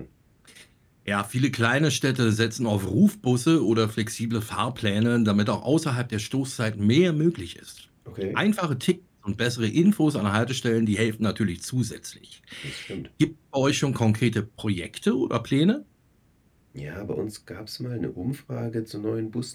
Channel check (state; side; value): identical; both; correlation 1.00